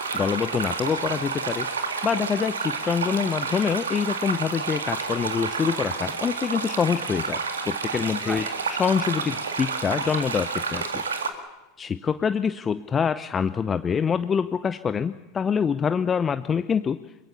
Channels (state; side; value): quieter; right; 3.6 dB